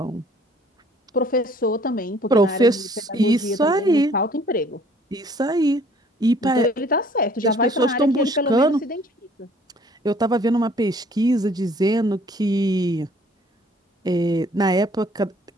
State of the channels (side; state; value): both; normal; correlation 0.57